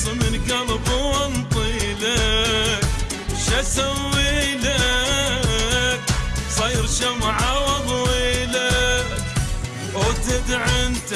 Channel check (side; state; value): both; identical; correlation 1.00